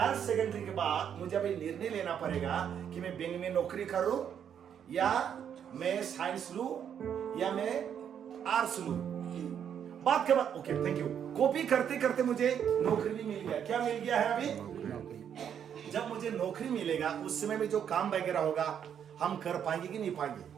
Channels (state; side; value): quieter; left; 8.6 dB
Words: सेकेंडरी के बाद मुझे अभी निर्णय लेना पड़ेगा कि मैं बैंक में नौकरी करूं, या मैं साइंस लूं, या मैं आर्ट्स लूं। बात के बाद ओके थैंक यू, कॉपी करते करते मुझे नौकरी भी मिल गया। क्या मिल गया है अभी, जब मुझे नौकरी मिलेगा उस समय में जो काम वगैरह होगा हम कर पाएंगे कि नहीं पाएंगे।